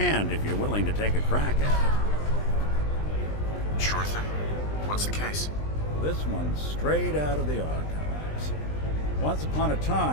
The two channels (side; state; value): right; late; 20 ms